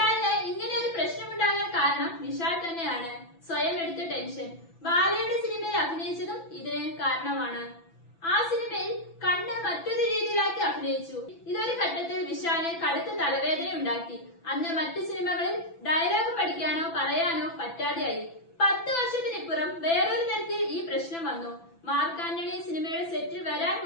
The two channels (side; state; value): right; late; 6.0 ms